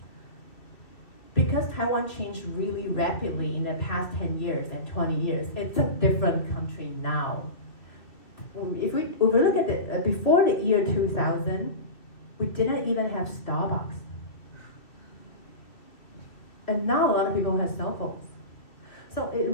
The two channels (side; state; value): right; late; 2.3 ms